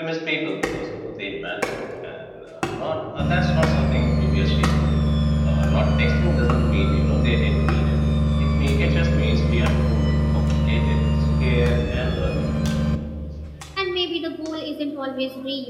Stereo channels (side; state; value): both; identical; correlation 1.00